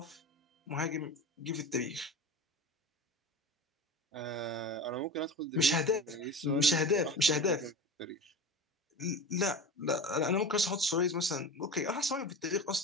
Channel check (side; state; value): both; normal; correlation 0.31